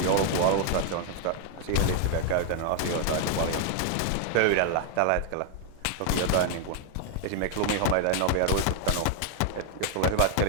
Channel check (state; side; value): different; both; correlation 0.00